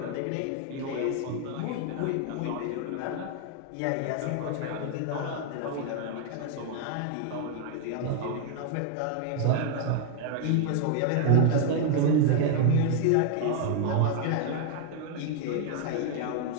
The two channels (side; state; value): both; different; correlation 0.00